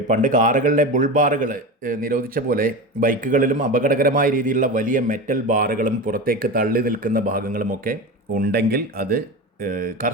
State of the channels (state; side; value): normal; both; correlation 0.25